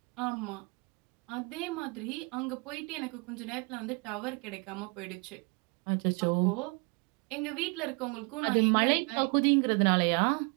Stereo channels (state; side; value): quieter; left; 31.5 dB